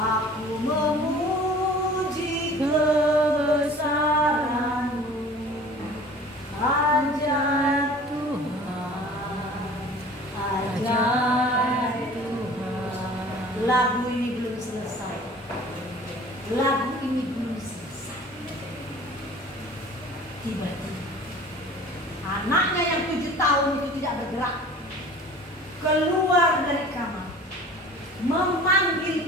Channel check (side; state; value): both; normal; correlation 0.45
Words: memuji kebesaran-Mu, ajaib Tuhan, ajaib Tuhan. Lagu ini belum selesai. Lagu ini belum selesai. Tiba-tiba anaknya yang 7 tahun itu tidak bergerak, keluar dari kamar,